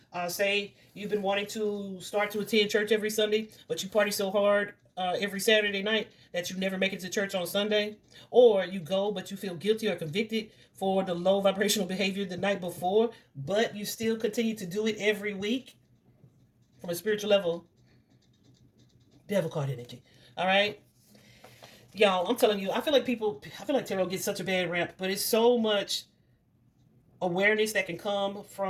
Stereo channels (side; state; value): both; identical; correlation 1.00